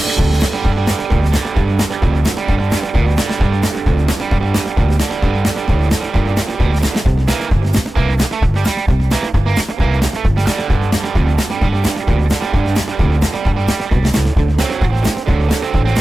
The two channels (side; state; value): both; normal; correlation 0.95